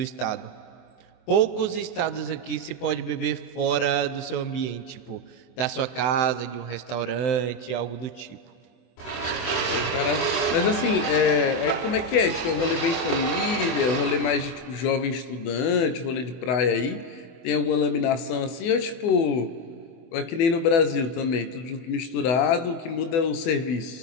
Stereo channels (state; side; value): late; right; 24 ms